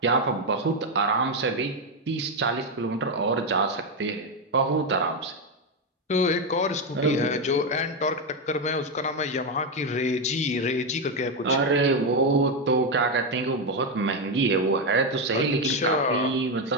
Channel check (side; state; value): both; normal; correlation 0.07